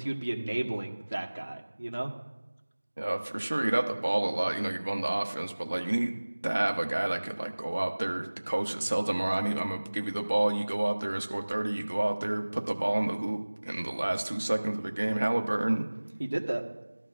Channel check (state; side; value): inverted; both; correlation -1.00